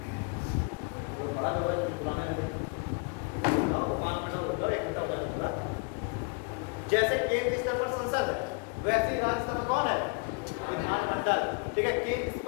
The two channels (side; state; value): right; quieter; 33.5 dB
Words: जैसे केंद्र स्तर पर संसद है वैसे राज्य स्तर पर कौन है, विधानमंडल। ठीक है, केंद्र